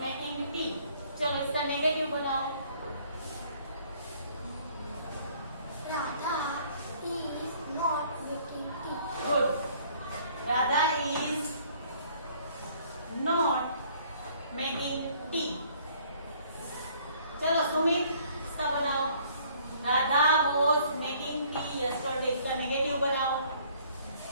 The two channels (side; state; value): both; inverted; correlation -0.59